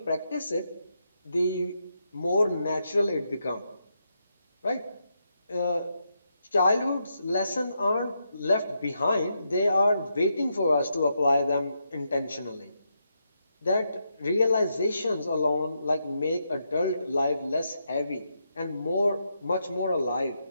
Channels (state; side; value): inverted; both; correlation -0.82